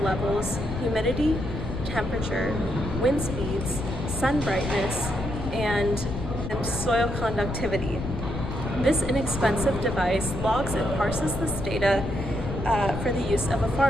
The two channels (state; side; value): noise; left; rumble, 5 dB below the sound